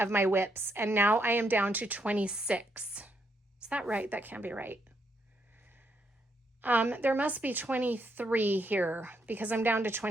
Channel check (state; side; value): normal; both; correlation 0.76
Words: my whips, and now I am down to 26. Is that right? That can't be right. There must be 23 here because I'm down to